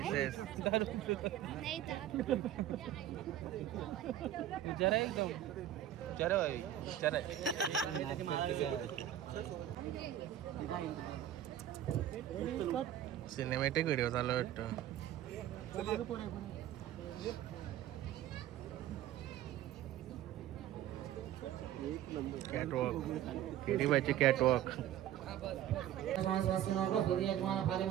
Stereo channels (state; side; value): quieter; left; 11.8 dB